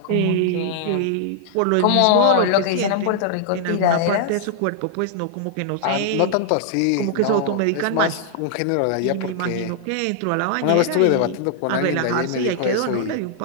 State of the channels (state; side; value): different; both; correlation -0.01